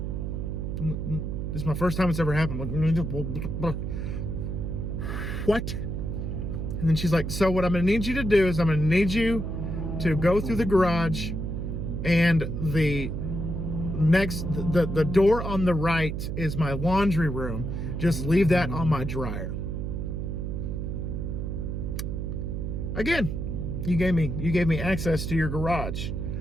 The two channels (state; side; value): noise; right; hum, 3 dB below the sound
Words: This is my first time it's ever happened. What? And then she's like, so what I'm gonna need you to do is I'm gonna need you to go through the garage, and the door on the right is my laundry room. Just leave that on my dryer. Again, you gave me access to your garage.